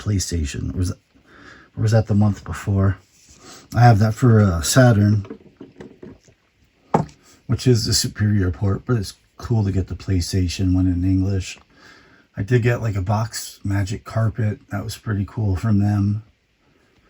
Or was that the month before? I have that for Saturn, which is the superior port, but it's cool to get the PlayStation one in English. I did get like a box Magic Carpet. That was pretty cool from them.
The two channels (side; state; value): both; identical; correlation 1.00